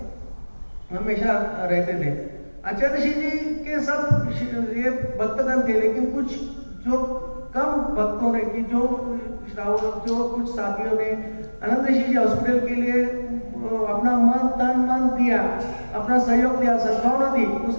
हमेशा रहते थे। आचार्य ऋषि जी के सब ये भक्तगण थे, लेकिन कुछ जो कम भक्तों ने कि जो श्रावक जो कुछ साथियों ने आनंद ऋषि जी हॉस्पिटल के लिए अपना मन तन मन दिया, अपना सहयोग दिया, सद्भावना दी।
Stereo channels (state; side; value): inverted; both; correlation -1.00